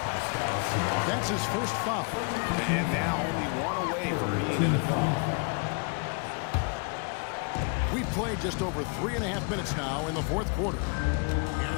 That's his first foul. And now only one away from being in the penalty. We've played just over 3.5 minutes now in the fourth quarter.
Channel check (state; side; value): quieter; right; 35.8 dB